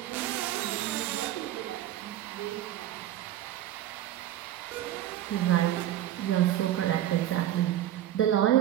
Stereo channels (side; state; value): left; quieter; 12.5 dB